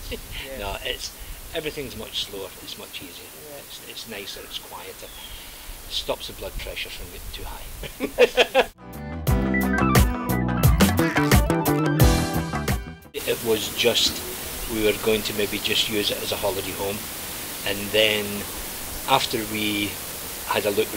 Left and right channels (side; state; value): both; identical; correlation 1.00